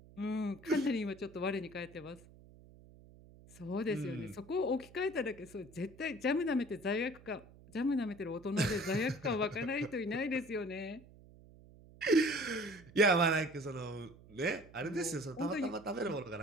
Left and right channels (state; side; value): noise; right; hum, 22 dB below the sound